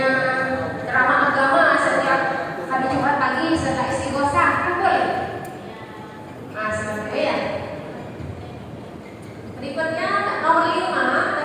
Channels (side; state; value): both; identical; correlation 1.00